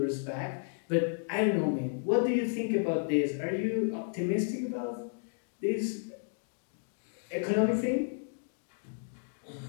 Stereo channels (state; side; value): silent; right; digital silence